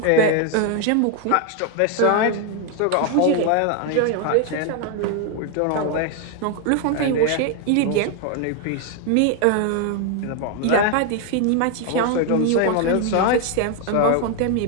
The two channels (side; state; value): both; different; correlation 0.01